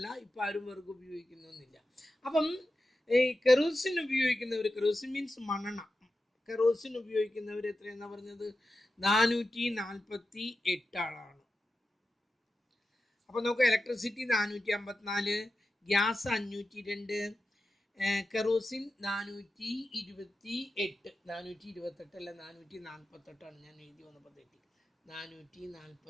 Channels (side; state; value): both; normal; correlation 0.92